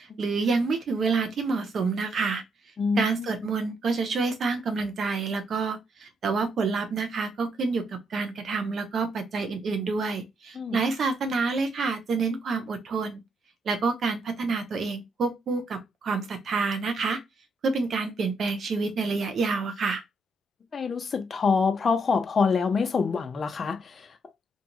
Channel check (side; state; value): both; normal; correlation 0.76